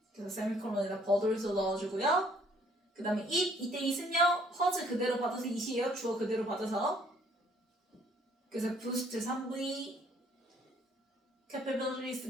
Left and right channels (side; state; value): both; normal; correlation 0.62